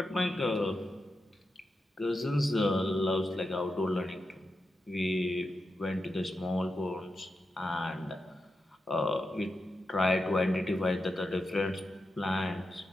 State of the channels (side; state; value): both; normal; correlation 0.88